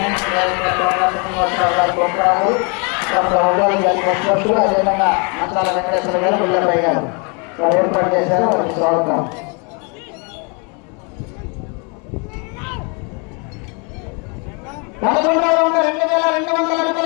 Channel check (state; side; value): quieter; right; 34.1 dB